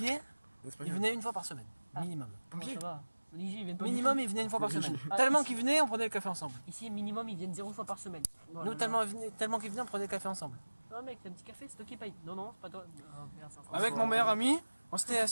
C'est pas ils grave. venaient une fois par semaine, Ah. minimum. Pompiers. Ça va. Ici, ils viennent pas du Minimum, tout. ils venaient une fois par semaine. Ah, Tellement ici- qu'ils venaient, on prenait le café ensemble. Ici, minimum, ils viennent 0 fois par semaine. Oh là Nous, là. tellement qu'ils venaient, on prenait le café ensemble. Non, mec, t'as un petit café, c'est toi qui paye. Non, non, c'est pas toi. Ah, merde, ça Avec mon meilleur ami, on s'était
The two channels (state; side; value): inverted; both; correlation -1.00